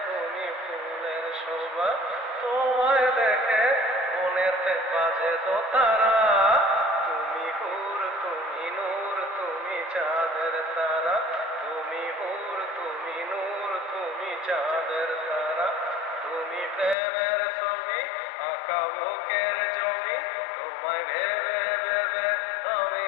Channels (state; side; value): drops out; right; at 16.9 s